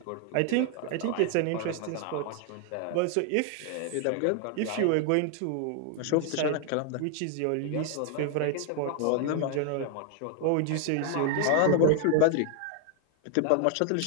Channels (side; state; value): both; different; correlation 0.00